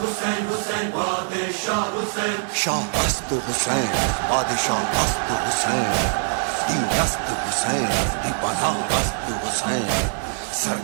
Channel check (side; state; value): left; silent; 58 dB below the other